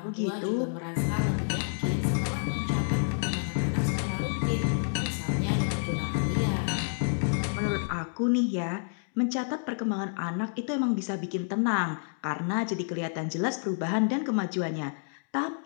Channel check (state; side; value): silent; right; digital silence